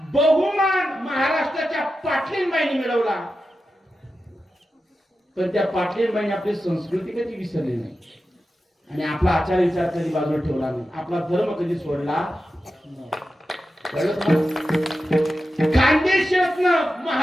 बहुमान महाराष्ट्राच्या पाटलींबाईंनी मिळवला, पण त्या पाटलींबाईंनी आपली संस्कृती कधी विसरली नाही आणि आपला आचार विचार कधी बाजूला ठेवला नाही, आपला धर्म कधी सोडला. खानदेशातन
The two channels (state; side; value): normal; both; correlation 0.91